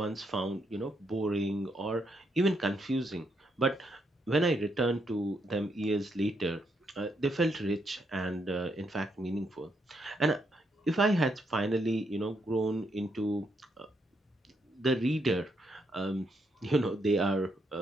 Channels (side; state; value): both; normal; correlation 0.77